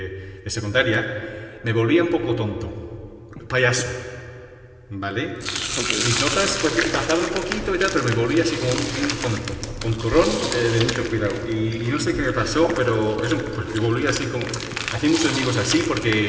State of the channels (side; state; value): both; identical; correlation 1.00